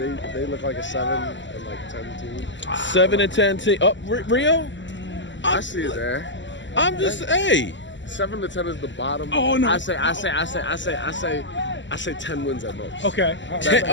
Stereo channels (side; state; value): right; late; 0.54 ms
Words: They look like a 7 and 10 team. 7 and 10 team. Oh, Rio? I see it there. I'm just, hey. 7 to 10 is the bottom. Oh no! I say 10 wins at most. Okay.